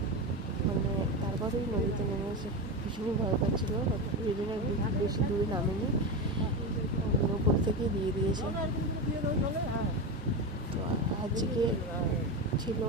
মানে তারপরেই নদীতে নেমেছে। ভীষণই ভয় পাচ্ছিলো, ওই জন্য বেশি দূরে নামেনি, ওপর থেকেই দিয়ে দিয়েছে। তো আজকে ছিল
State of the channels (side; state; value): both; normal; correlation 0.18